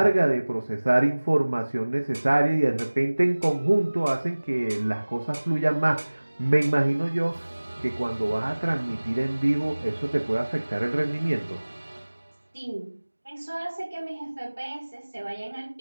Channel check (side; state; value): both; inverted; correlation -1.00